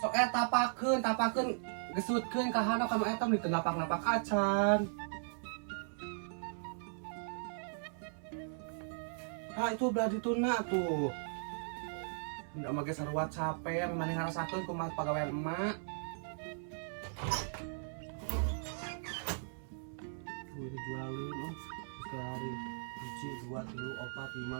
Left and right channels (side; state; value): left; silent; 53 dB below the other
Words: Sok tapakeun gesutkeun ka handap ka eta meureun napak-napak acan. Ah itu udah dituna tuh. Ndak make sarua capek, maneh ngarasakeun kumaha pagawean emak. Tuh dijualin oh sekali. 1, 2, 3, 4, 5,